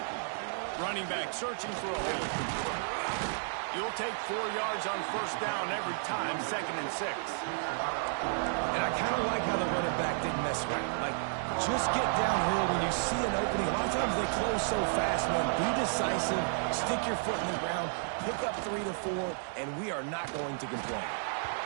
Running back searching for a hole. You'll take 4 yards on 1st down every time, 2nd and 6. And I kind of like how the running back didn't mess around. Like, just get downhill when you see an opening. A lot of times they close so fast, man. Be decisive, stick your foot in the ground, pick up 3 to 4, and we are not going to complain.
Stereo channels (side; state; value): left; silent; digital silence